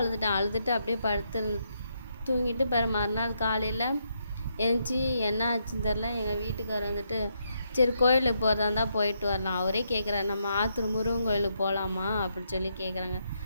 அப்படியே படுத்து தூங்கிட்டு மறுநாள் காலையில் எழுந்துச்சி என்ன ஆச்சுன்னு தெரில. எங்கள் வீட்டுக்காரர் சரி கோயிலுக்கு போகிறதா இருந்தால் போயிட்டு வரலாம். அவரே கேட்குறாரு, நம்ம ஆத்தூர் முருகன் கோயிலுக்கு போகலாமா அப்படின்னு சொல்லி கேட்குறாங்க.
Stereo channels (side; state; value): both; inverted; correlation -0.78